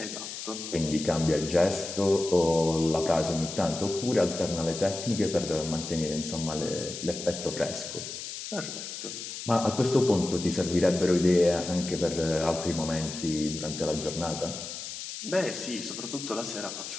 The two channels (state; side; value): noise; left; hiss, 8 dB below the sound